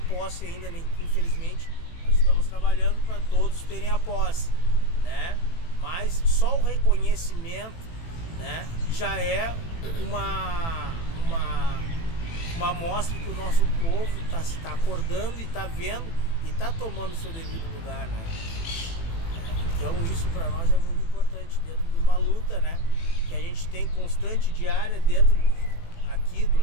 ainda, infelizmente. Estamos trabalhando para todos terem a posse, né? Mas só o reconhecimento, né, já é uma amostra que o nosso povo está acordando e está vendo e está tomando o seu devido lugar, né? Então isso para nós é muito importante dentro de uma luta, né, que a gente tem constante, diária, dentro aqui do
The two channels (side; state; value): right; late; 18 ms